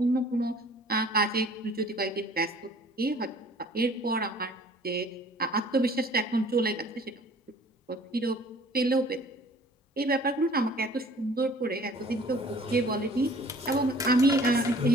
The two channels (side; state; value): both; normal; correlation 0.52